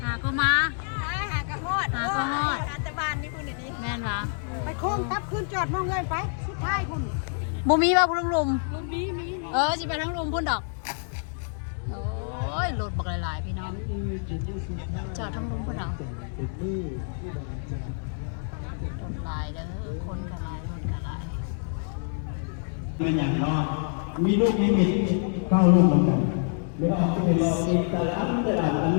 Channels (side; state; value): right; silent; 60 dB below the other